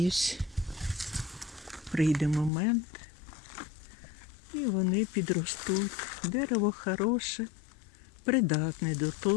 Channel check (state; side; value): drops out; right; at 2.5 s